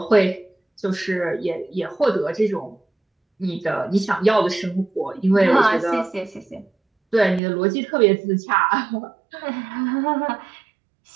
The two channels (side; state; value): left; drops out; at 7.4 s